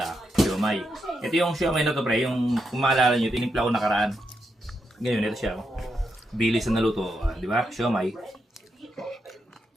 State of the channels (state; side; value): normal; both; correlation 0.83